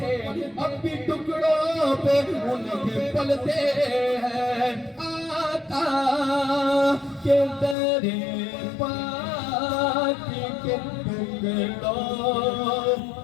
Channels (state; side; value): drops out; right; at 7.8 s